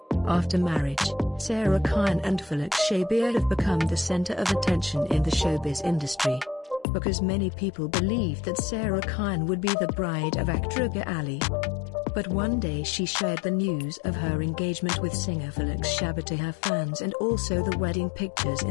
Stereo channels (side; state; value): right; drops out; at 6.9 s